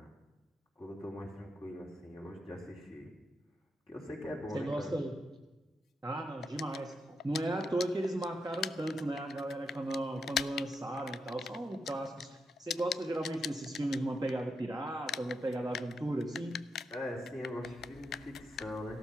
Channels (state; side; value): normal; both; correlation 0.84